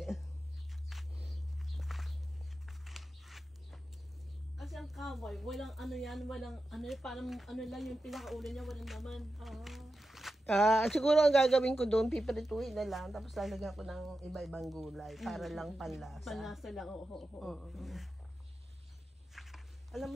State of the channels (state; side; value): normal; both; correlation 0.91